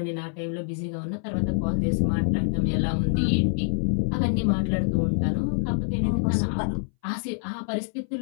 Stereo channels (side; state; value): right; silent; 60 dB below the other